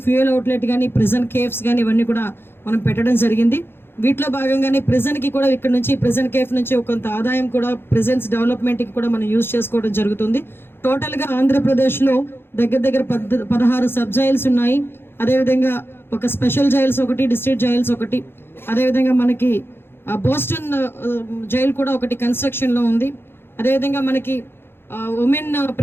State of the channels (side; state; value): right; late; 0.11 ms